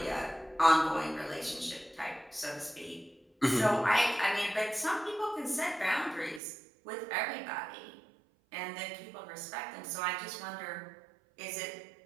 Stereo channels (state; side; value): drops out; left; at 6.4 s